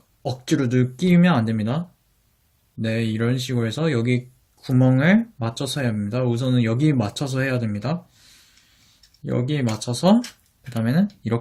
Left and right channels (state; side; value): identical; both; correlation 1.00